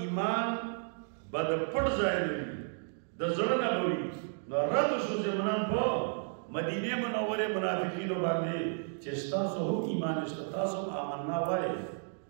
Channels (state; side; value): silent; left; digital silence